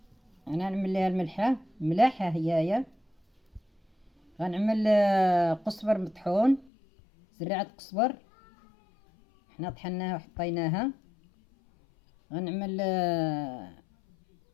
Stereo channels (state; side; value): drops out; right; at 6.7 s